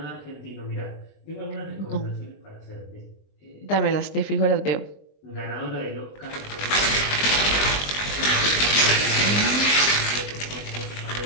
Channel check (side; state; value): right; late; 20 ms